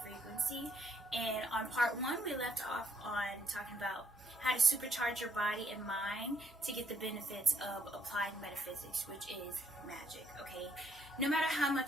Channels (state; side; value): normal; both; correlation 0.70